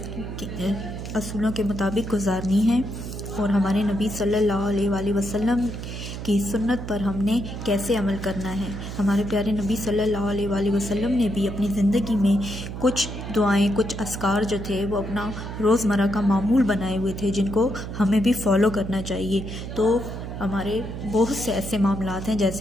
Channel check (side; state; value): right; noise; hum, 8 dB below the sound